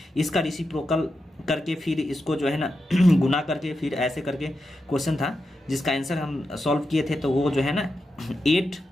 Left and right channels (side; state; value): both; normal; correlation 0.88